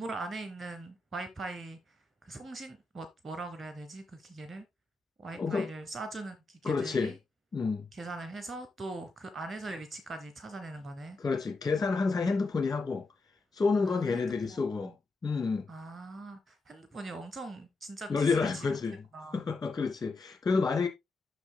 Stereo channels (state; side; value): quieter; right; 3.4 dB